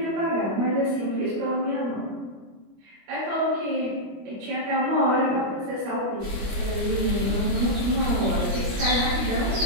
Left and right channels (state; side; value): late; left; 25 ms